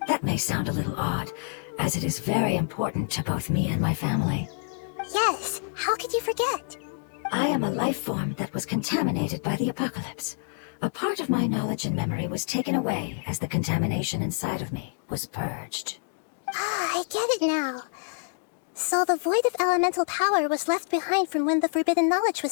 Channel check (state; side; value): silent; right; 60 dB below the other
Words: That may sound a little odd, as it is very important to both me and my family. Yes, how could you forget? I am a life form that was contaminated by the apocalypse. A part of my knowledge and memory was taken away as the contamination inside of me was purged. Ah, I get it now. So the void of elemental power was left behind from when the forbidden knowledge